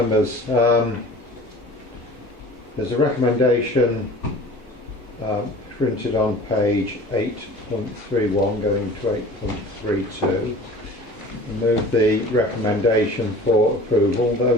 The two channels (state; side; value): normal; both; correlation 0.43